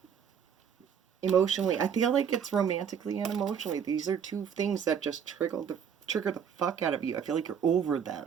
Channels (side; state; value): left; quieter; 7.6 dB